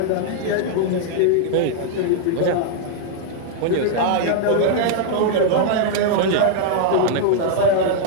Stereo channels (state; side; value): different; both; correlation -0.01